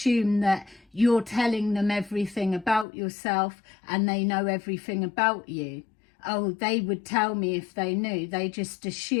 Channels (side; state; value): right; drops out; at 2.9 s